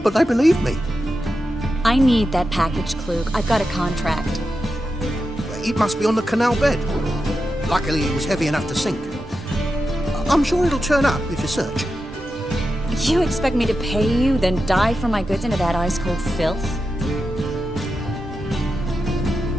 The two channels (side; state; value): both; normal; correlation 0.89